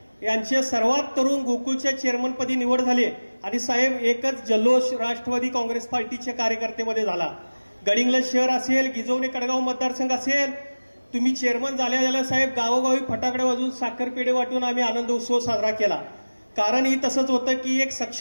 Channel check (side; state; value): both; inverted; correlation -1.00